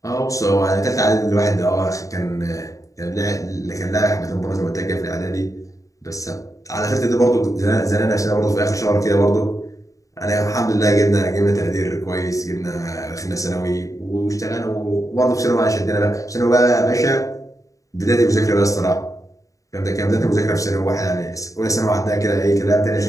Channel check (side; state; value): right; late; 0.16 ms